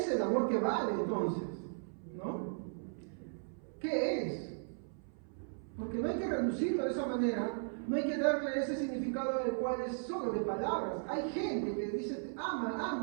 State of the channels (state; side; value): silent; left; 53 dB below the other